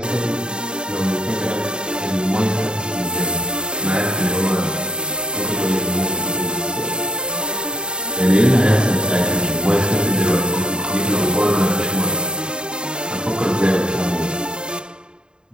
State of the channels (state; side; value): late; left; 0.049 ms